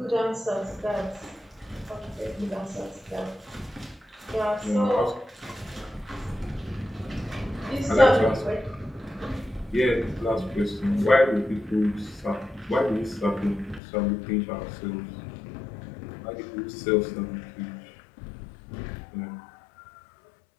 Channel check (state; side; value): drops out; right; at 13.8 s